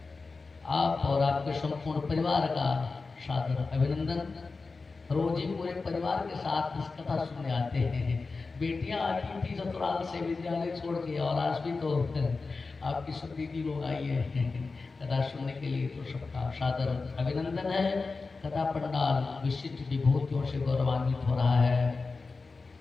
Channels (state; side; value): quieter; right; 4.1 dB